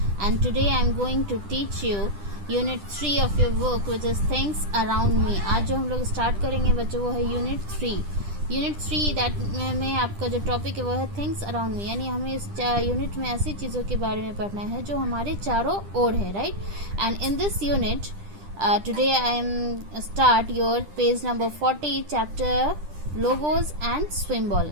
and today I am going to teach you Unit 3 of your book which is Things Around Me. आज जो हम लोग स्टार्ट करेंगे बच्चों वो है Unit 3. यूनिट 3 दैट में आपका जो टॉपिक है वो है थिंग्स अराउंड मी, यानी हमें इस यूनिट में ऐसी चीज़ों के बारे में पढ़ना है जो हमारे चारों ओर है, right. And in this unit today I am start your page number 40 chapter logos and swim ball.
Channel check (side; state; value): left; late; 10 ms